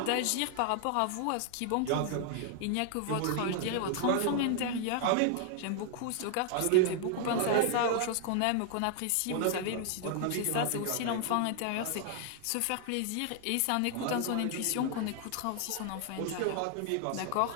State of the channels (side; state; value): both; different; correlation 0.00